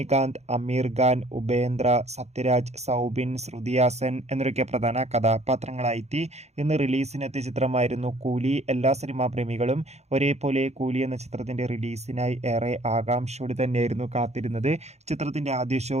അമീർ ഖാൻ, ഉപേന്ദ്ര, സത്യരാജ്, സൗബിൻ, ശ്രുതി ഹാസൻ എന്നൊക്കെ പ്രധാന കഥാപാത്രങ്ങളായി ഇന്ന് റിലീസിനെത്തിയ ചിത്രമായിരുന്നു കൂലി. എല്ലാ സിനിമാ പ്രേമികളും ഒരേപോലെ കൂലി എന്ന ചിത്രത്തിന്റെ റിലീസിനായി ഏറെ ആകാംക്ഷയോടെ തന്നെയായിരുന്നു കാത്തിരുന്നത്. ചിത്രത്തിന്റെ ആദ്യ ഷോ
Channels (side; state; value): left; late; 0.32 ms